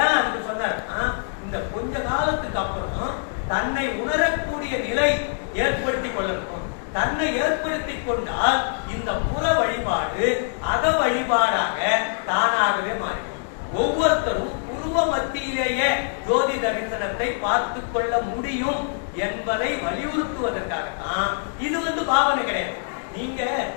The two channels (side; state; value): right; silent; 63 dB below the other